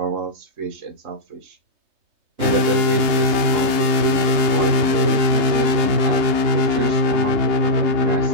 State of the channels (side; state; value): left; late; 3.2 ms